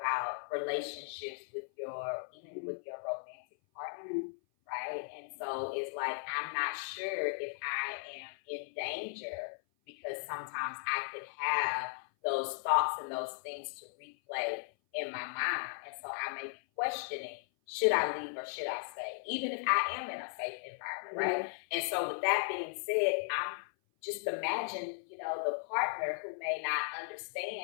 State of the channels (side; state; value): right; silent; 53 dB below the other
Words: relationships even with your romantic partner, right? And so it's like, I'm not sure if I am in danger because sometimes I could have those thoughts and those things to replay in my mind. And so I may be questioning, should I leave or should I stay? Even if I am in a safe environment, right? And so with that being said, I'm just imagine, the partner who may not